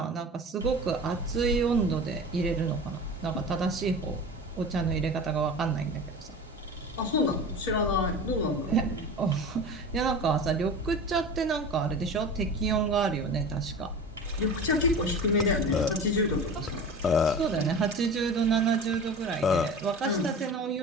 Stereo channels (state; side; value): normal; both; correlation 0.34